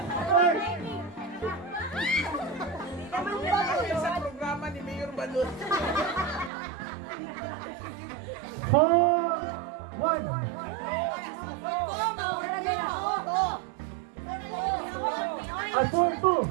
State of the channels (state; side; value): drops out; left; at 6.5 s